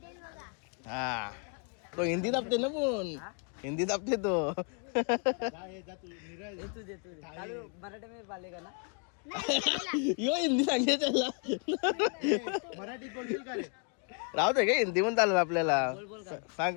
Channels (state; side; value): quieter; right; 39.0 dB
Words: हा तो हिंदी दाबते ना पण हिंदी दाबते तो. यो हिंदी सांगते त्याला. मराठी बोलशील का रे? राहू दे का हिंदी पण चालेल आपल्याला.